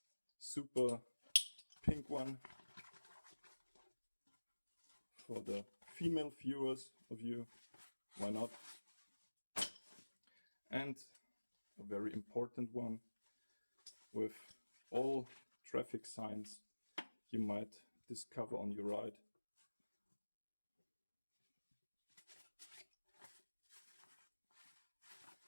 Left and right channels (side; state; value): both; inverted; correlation -1.00